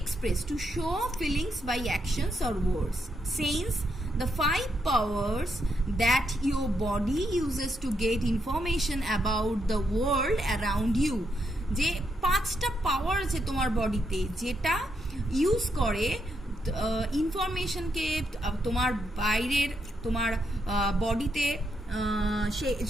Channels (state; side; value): normal; both; correlation 0.79